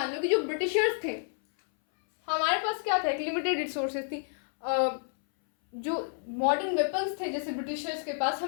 लो कि जो ब्रिटिशर्स थे, हमारे पास क्या था, एक लिमिटेड रिसोर्सेज थी। जो मॉडर्न वेपन्स थे जैसे ब्रिटिशर्स के पास,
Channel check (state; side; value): silent; right; 58 dB below the other